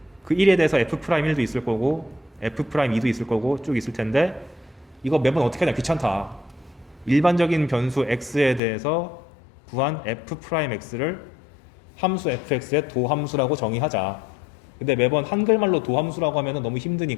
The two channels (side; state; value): right; drops out; at 8.6 s